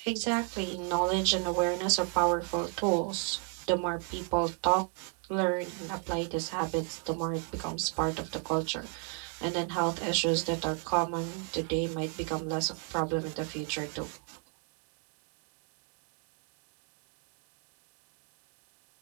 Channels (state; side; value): quieter; left; 31.3 dB